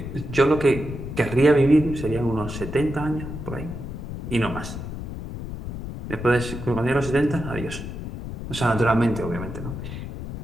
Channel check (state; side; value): noise; left; rumble, 8 dB below the sound